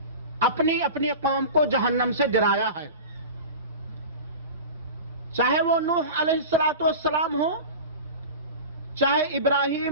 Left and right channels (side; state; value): both; inverted; correlation -0.31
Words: اپنی اپنی قوم کو جہنم سے ڈرایا ہے، چاہے وہ نوح علیہ السلام ہو، چاہے